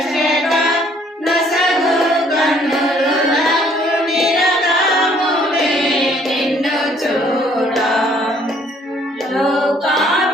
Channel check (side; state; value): both; normal; correlation 0.62